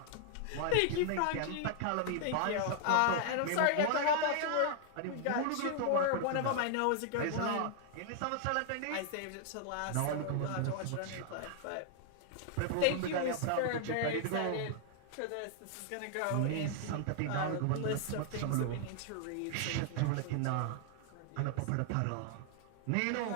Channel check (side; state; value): both; different; correlation 0.00